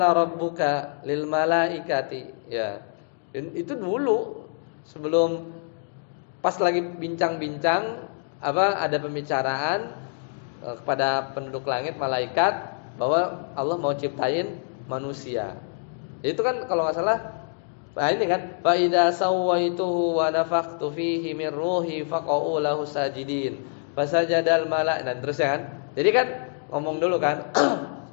rabbuka lil malaikati ya. Dan itu dulu sebelum pas lagi bincang-bincang ada pembicaraan kepada penduduk langit malaikat bahwa Allah mau ciptain manusia. Itu kan kalau enggak salah ini kan fa idza sawaituhu wa nafakhtu fihi min ruhi faqa'u lahu sajidin. Fasajadal malaik dan terus ya kan. Jadi kan ngomong dulu kan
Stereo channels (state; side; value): silent; right; digital silence